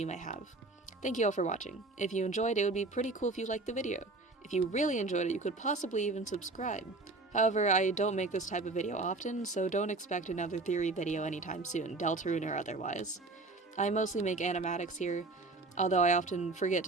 may have. Thank you all for watching. If you enjoyed, it would be pretty cool if you liked the video. If you really enjoyed it, you could possibly even subscribe. However, I don't make this type of video often, so don't expect another theory video anytime soon, Deltarune or otherwise. I mostly make animatics here, although I often forget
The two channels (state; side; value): quieter; left; 3.3 dB